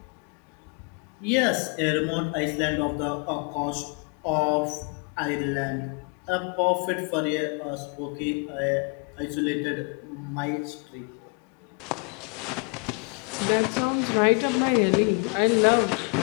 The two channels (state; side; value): quieter; right; 36.7 dB